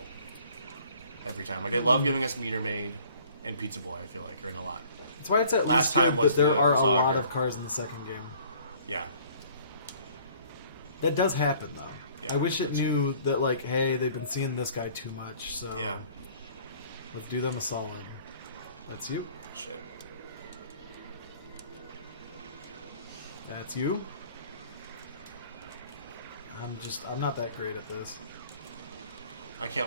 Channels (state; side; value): inverted; both; correlation -0.54